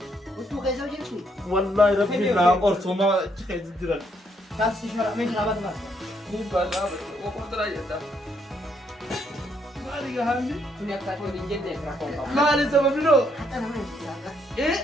Budu kaisa jadi. والله ربي لا أرسوما شيء جدرا. Kasih suara main rabat mas. Bukan apa, aku terakhir dah. Mari kami. punya kata rinjen deh rakong Mari sama dulu. Kata namanya.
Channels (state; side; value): normal; both; correlation 0.73